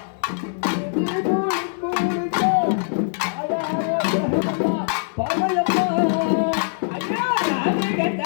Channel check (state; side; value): silent; right; digital silence